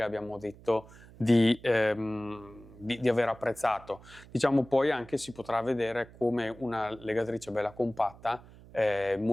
abbiamo detto di aver apprezzato. Diciamo, poi anche si potrà vedere come una legatrice bella compatta è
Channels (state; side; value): noise; right; hum, 21 dB below the sound